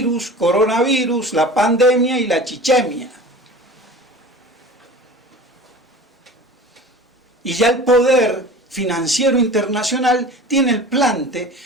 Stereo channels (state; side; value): normal; both; correlation 0.38